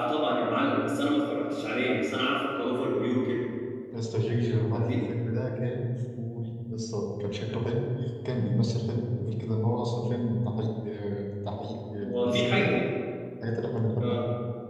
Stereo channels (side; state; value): both; identical; correlation 1.00